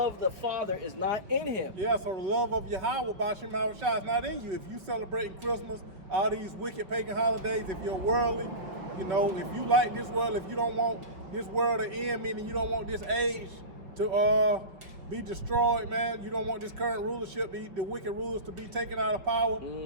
of the Father is not in him. Yeah, so the love of Yahweh Bashim Shai is not in you. If you celebrating Christmas, all these wicked pagan holidays, if you're worldly, you know, if you like this world, if you don't want this world to end, meaning you don't want this age to be destroyed, man. You don't want this current rulership, the wicked rulers to be taken out of power.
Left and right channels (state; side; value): late; left; 5.2 ms